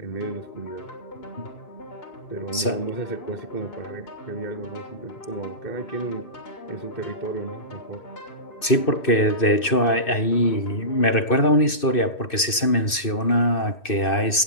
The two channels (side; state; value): right; late; 2.6 ms